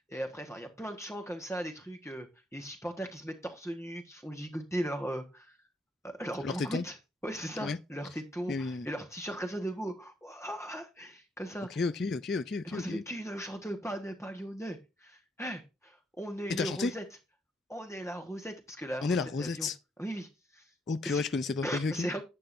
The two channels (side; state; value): both; normal; correlation 0.73